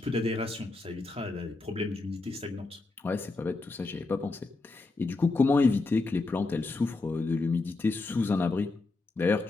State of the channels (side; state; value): right; quieter; 3.5 dB